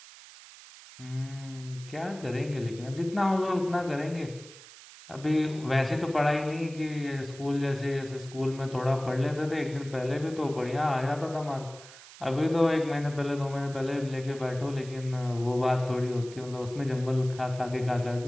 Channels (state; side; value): noise; right; hiss, 18 dB below the sound